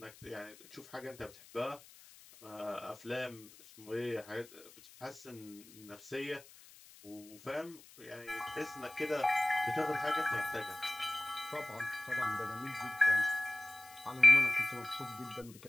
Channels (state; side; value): noise; left; hiss, 21 dB below the sound